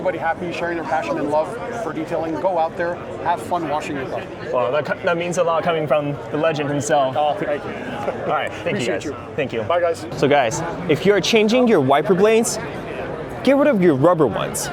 happy, sharing their passion and love for detailing. Go out there, have fun washing your car. Well, that means a lot coming from the legend himself. Oh, thank you. All right, thank you guys. Thank you. Bye, guys. So guys, if you're changing your wiper blades, get rid of your rubber ones,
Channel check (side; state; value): both; identical; correlation 1.00